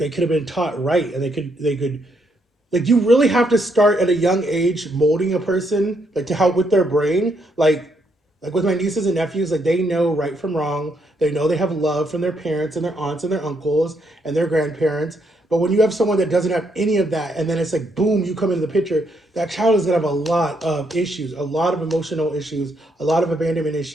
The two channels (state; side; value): normal; both; correlation 0.75